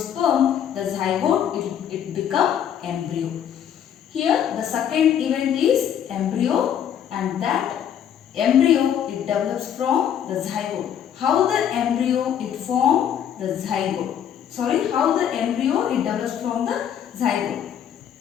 the zygote, it become embryo. Here the second event is embryo, and that embryo, it develops from the zygote. How the embryo, it form the zygote? How the embryo, it develops from the zygote.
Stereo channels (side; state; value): right; quieter; 9.3 dB